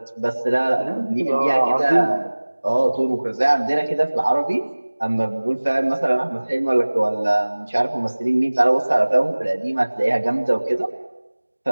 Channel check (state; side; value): inverted; both; correlation -1.00